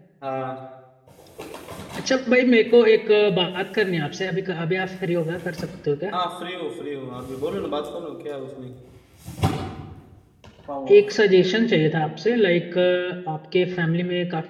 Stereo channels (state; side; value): identical; both; correlation 1.00